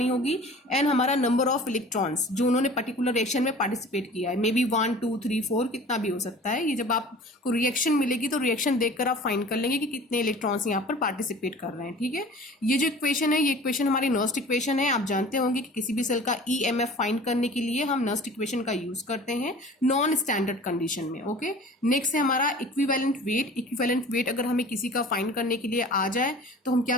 होगी. एंड हमारा नंबर ऑफ इलेक्ट्रॉन्स जो उन्होंने पर्टिकुलर रिएक्शन में पार्टिसिपेट किया है. मे बी 1 2 3 4 कितना भी हो सकता है. ये जब आपको रिएक्शन मिलेगी तो रिएक्शन देखकर आप फाइंड कर लेंगे कि कितने इलेक्ट्रॉन्स यहाँ पर पार्टिसिपेट कर रहे हैं. ठीक है. ये जो इक्वेशन है ये इक्वेशन हमारी नर्स्ट इक्वेशन है. आप जानते होंगे कि किसी भी सेल का EMF फाइंड करने के लिए हम नर्स्ट इक्वेशन का यूज करते हैं नॉन स्टैंडर्ड कंडीशन में. ओके. नेक्स्ट है हमारा इक्विवेलेंट वेट. इक्विवेलेंट वेट अगर हमें किसी का फाइंड करने के लिए आ जाए तो हम क्या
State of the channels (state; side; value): normal; both; correlation 0.43